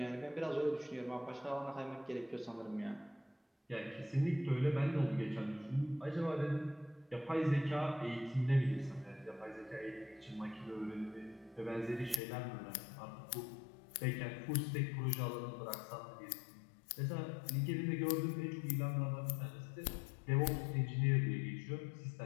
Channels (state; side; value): drops out; right; at 12.2 s